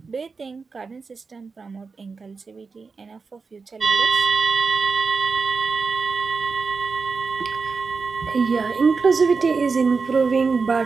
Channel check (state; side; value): quieter; left; 4.7 dB